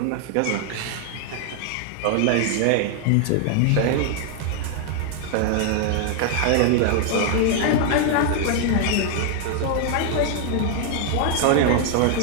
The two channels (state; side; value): different; both; correlation 0.00